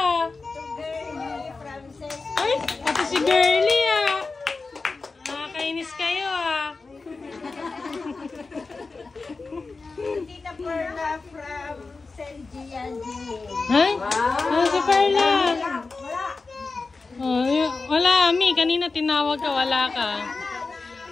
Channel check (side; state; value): right; quieter; 4.0 dB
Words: To Girlie, Frances. Ay, ito si Girlie ah. Nakakainis kayo ah. To Tita Perla from Selgian Jimmy. Ay? Ano si Perla? Oh, wala, Mi. Kanina tinawag ka, wala ka.